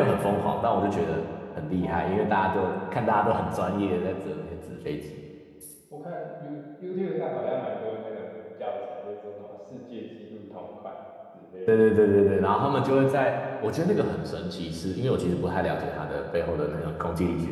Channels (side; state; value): both; identical; correlation 1.00